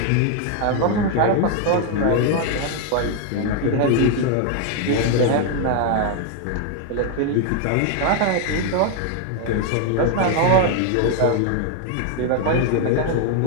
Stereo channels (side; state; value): both; different; correlation 0.01